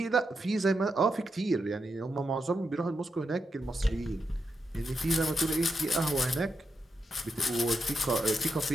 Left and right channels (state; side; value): normal; both; correlation 0.85